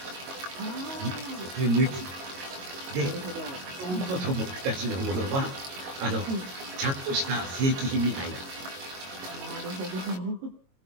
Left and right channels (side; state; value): left; late; 22 ms